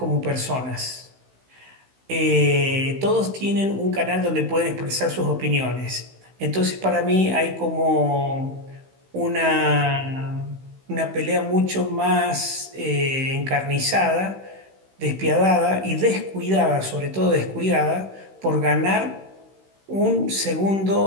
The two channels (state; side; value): late; left; 16 ms